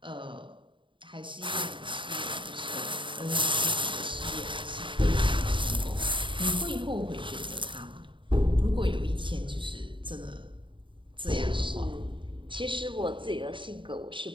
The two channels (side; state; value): left; late; 0.24 ms